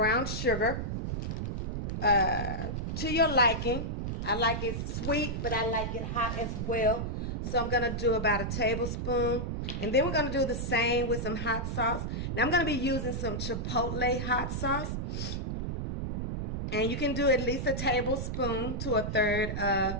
sugar to your liking. I like it sweet, but I like it hot as well. So I'm gonna do about a tablespoon, and then we're gonna do the same with some hot sauce. Now I'm gonna be using some Chipotle hot sauce, and you can do at least a tablespoon to a third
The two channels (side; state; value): right; noise; rumble, 2 dB below the sound